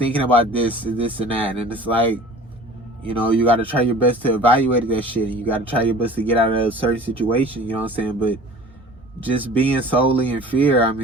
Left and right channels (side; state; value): both; normal; correlation 0.44